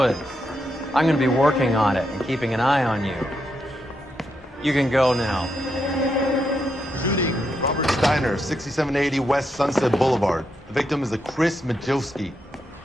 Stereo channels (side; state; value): both; normal; correlation 0.82